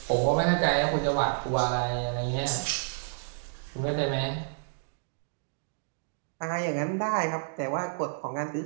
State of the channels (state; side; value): silent; left; digital silence